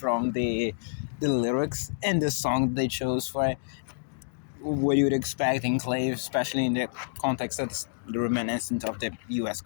the lyrics and the song they chose for it. What you would expect Enclave, especially in the context of the reminiscence of the U.S.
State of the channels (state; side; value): silent; right; digital silence